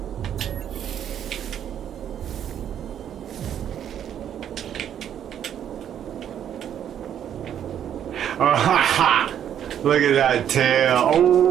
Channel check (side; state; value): left; quieter; 9.7 dB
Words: Look at that tail.